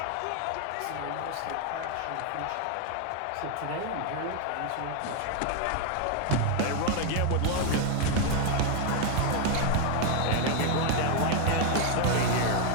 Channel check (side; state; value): both; different; correlation 0.01